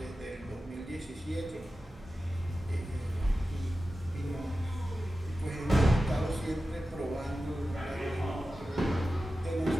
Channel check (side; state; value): both; normal; correlation 0.94